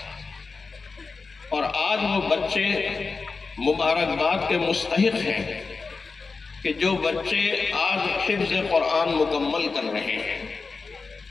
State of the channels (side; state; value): right; quieter; 4.4 dB